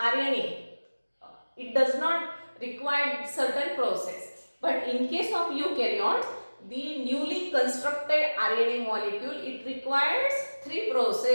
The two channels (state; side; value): inverted; both; correlation -1.00